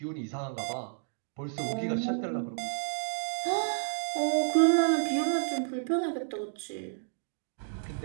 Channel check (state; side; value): silent; left; digital silence